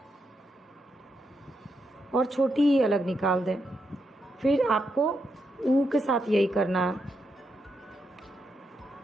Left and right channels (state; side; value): normal; both; correlation 0.82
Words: और छोटी ई अलग निकाल दें। फिर आपको ऊ के साथ यही करना है।